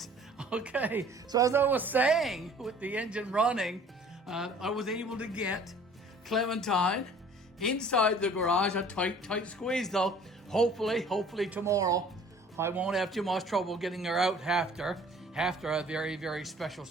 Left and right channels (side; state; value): both; normal; correlation 0.51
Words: Okay, so as I was saying, with the engine running, I was able to get Clementine inside the garage. A tight squeeze, though. Hopefully tomorrow I won't have too much trouble getting her out after a very, very special